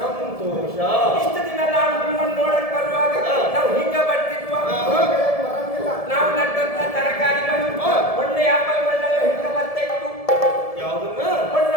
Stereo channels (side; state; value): right; late; 1.7 ms